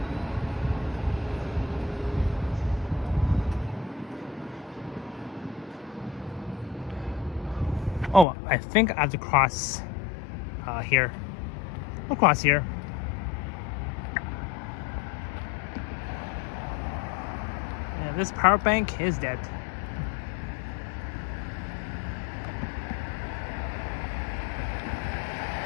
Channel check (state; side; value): drops out; right; at 8.2 s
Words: Oh, I think I have to cross here. I'll cross here. Yeah, this power bank is dead.